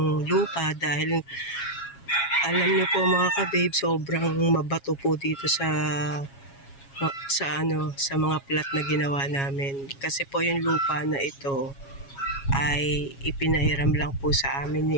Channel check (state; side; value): late; right; 7.3 ms